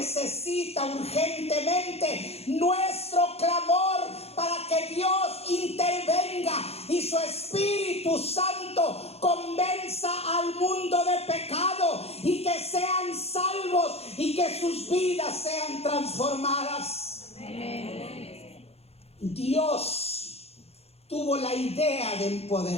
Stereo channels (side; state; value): right; late; 0.30 ms